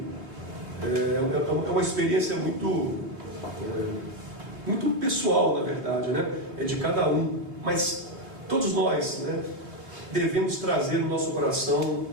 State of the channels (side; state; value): left; late; 3.4 ms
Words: É uma experiência muito pessoal, na verdade, né? É de cada um, mas todos nós, né, devemos trazer no nosso coração